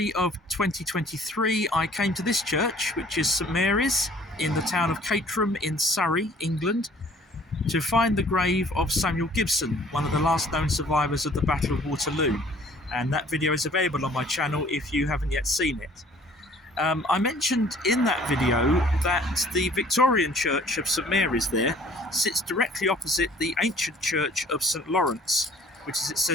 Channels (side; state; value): both; normal; correlation 0.55